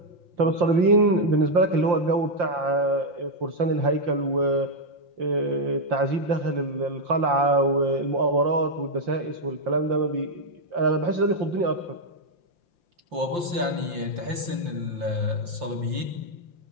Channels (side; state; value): left; late; 5.7 ms